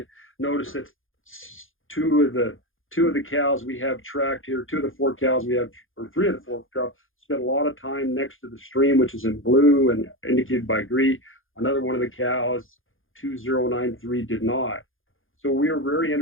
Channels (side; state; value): right; late; 0.59 ms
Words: Notice that two of the cows we have tracked here, 2 of the 4 cows we have, or 3 of the 4 cows, spent a lot of time next to the stream, which is in blue and indicated by green. Another one of the cows, 2093, did not. So we are very